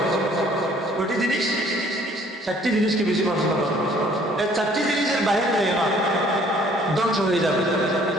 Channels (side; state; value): both; normal; correlation 0.58